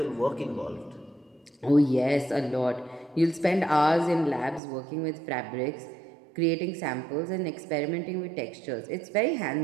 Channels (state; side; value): drops out; left; at 4.6 s